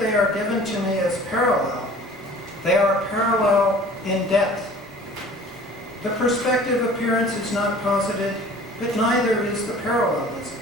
are given to me as parallel. They are parallel in depth. The perspective appearance is not posited, but neither is the parallelism.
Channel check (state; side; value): normal; both; correlation 0.46